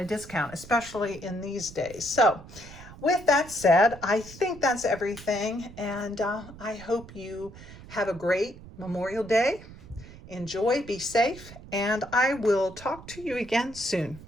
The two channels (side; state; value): right; noise; rumble, 17 dB below the sound